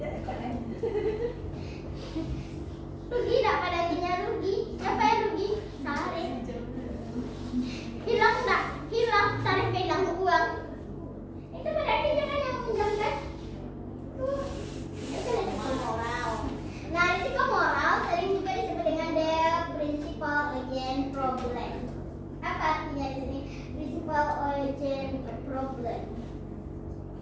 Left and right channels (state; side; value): identical; both; correlation 1.00